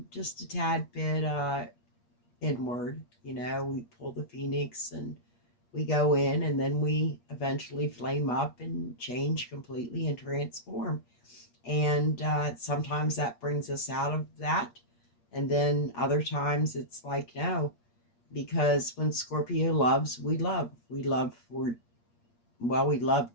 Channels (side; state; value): right; late; 8.6 ms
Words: just a tad bit inward. We pull the phoenix and we go in, and then we eventually flame up and change completely and transform. And sometimes that brings us out of that. And then other times it's like, no, because when Scorpio loves, we love. We love for, well, we love